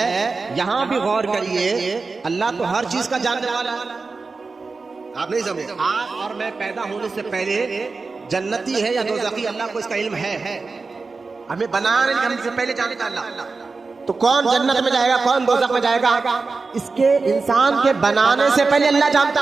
یہاں بھی غور کریے، اللہ تو ہر چیز کا جاننے والا ہے. آپ نہیں سمجھے؟ آپ اور میں پیدا ہونے سے پہلے جنتی ہے یا دوزخی، اللہ کو اس کا علم ہے. ہمیں بنانے سے پہلے جانتا اللہ. تو کون جنت میں جائے گا، کون دوزخ میں جائے گا، اس کے انسان کے بنانے سے پہلے اللہ جانتا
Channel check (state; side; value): quieter; left; 4.1 dB